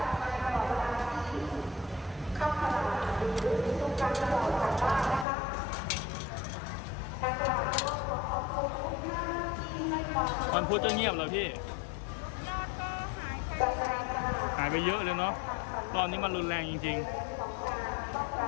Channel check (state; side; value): drops out; right; at 5.2 s